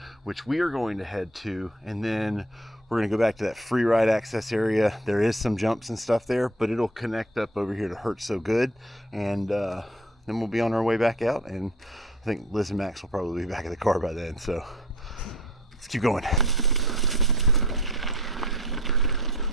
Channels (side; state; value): both; normal; correlation 0.49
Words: which we are going to head to, and then we're gonna go back to that free ride access area. There is some jumps and stuff there, but it'll connect up over here to Hurt So Good, and then we'll be on our way back out, and I think Liz and Max will probably be back in the car by then, so let's keep going.